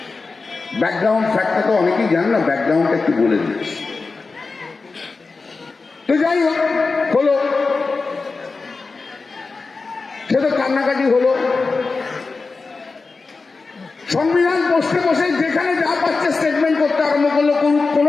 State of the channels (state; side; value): quieter; right; 4.1 dB